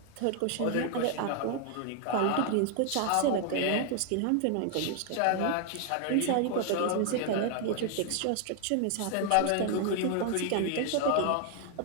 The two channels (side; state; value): both; different; correlation 0.00